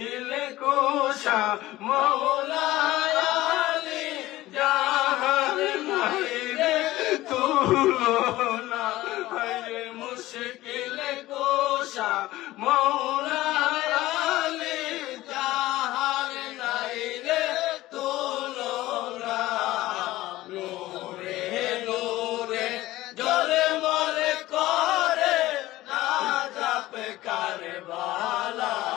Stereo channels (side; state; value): right; quieter; 16.8 dB